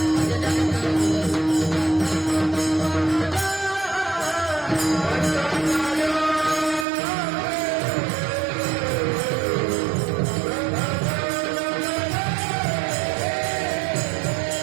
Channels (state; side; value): drops out; left; at 6.9 s